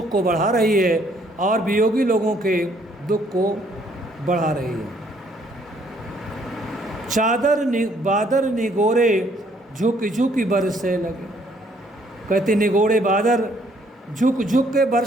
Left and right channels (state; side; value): normal; both; correlation 0.65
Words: को बढ़ा रही है और वियोगी लोगों के दुख को बढ़ा रही है। बादर निगोरे झुक झुक बरसे लगे। कहते निगोड़े बादर झुक झुक के